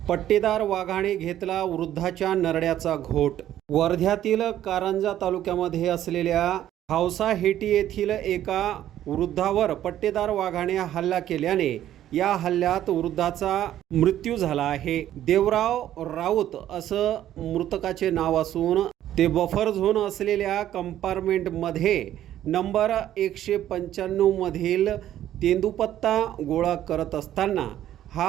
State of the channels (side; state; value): left; quieter; 12.1 dB